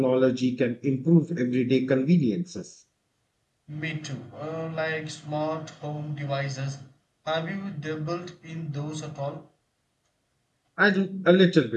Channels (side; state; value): both; identical; correlation 1.00